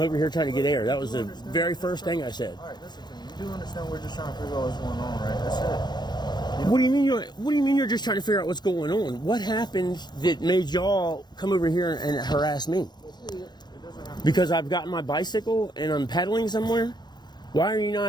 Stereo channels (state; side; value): late; right; 0.21 ms